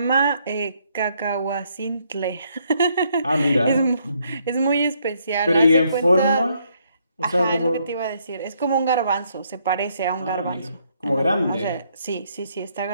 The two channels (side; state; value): both; inverted; correlation -0.71